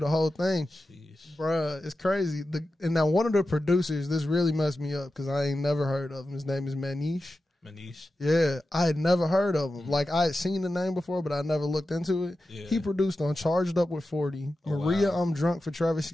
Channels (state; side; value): normal; both; correlation 0.92